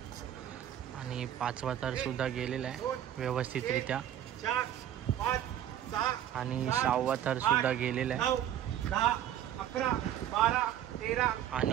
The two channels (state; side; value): quieter; left; 11.0 dB